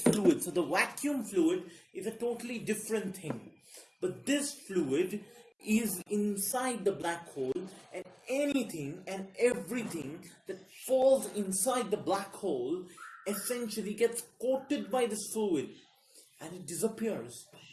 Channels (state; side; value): identical; both; correlation 1.00